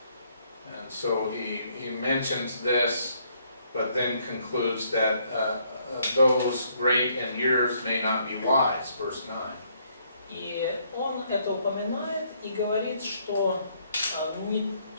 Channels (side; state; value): both; inverted; correlation -0.69